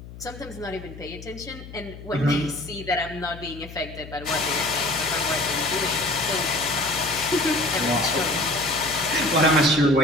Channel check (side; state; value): left; noise; hum, 15 dB below the sound